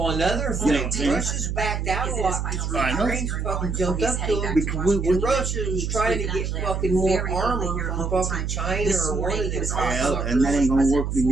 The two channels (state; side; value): noise; right; hum, 2 dB below the sound